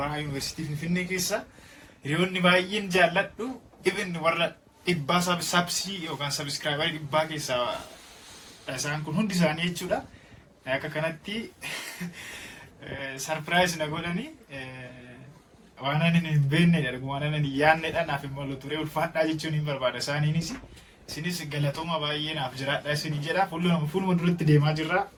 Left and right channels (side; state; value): both; identical; correlation 1.00